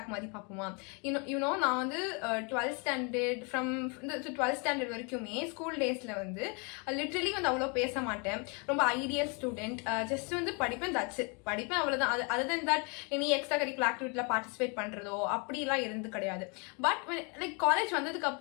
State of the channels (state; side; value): quieter; right; 33.7 dB